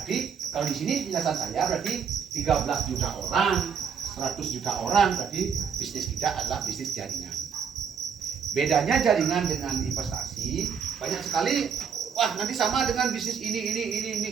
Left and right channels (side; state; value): left; quieter; 6.9 dB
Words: kalau di sini penjelasan saya berarti 13 juta orang, 100 juta orang, berarti bisnis kita adalah bisnis jaringan. Bedanya jaringan dengan investasi banyak sekali. Wah, nanti sama dengan bisnis ini